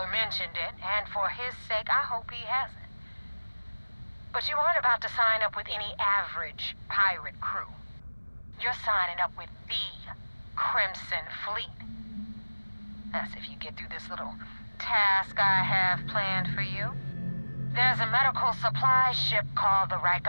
mentioned it, and for his sake, I hope he hasn't. But you aren't about to sign up with any average pirate crew. You're signing up with the Crimson Fleet. That's if you get through this little task I have planned for you. There's a medical supply ship called the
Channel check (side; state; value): both; inverted; correlation -1.00